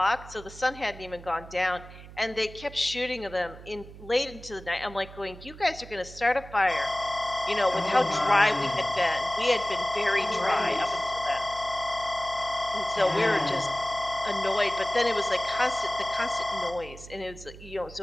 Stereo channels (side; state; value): right; noise; hum, 16 dB below the sound